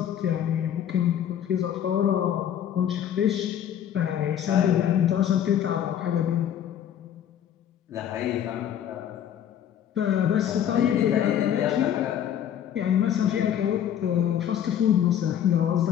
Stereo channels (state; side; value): quieter; right; 9.9 dB